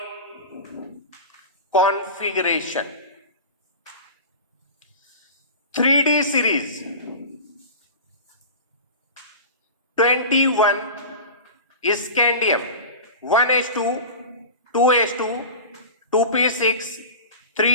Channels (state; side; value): inverted; both; correlation -0.32